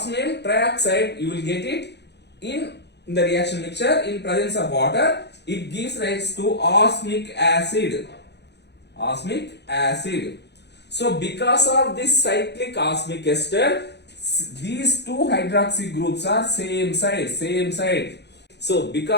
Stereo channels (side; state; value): right; late; 0.50 ms